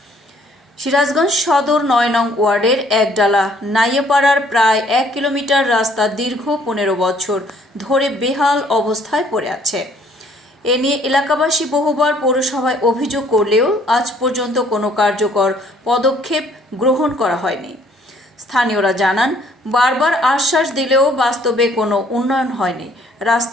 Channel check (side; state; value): both; normal; correlation 0.62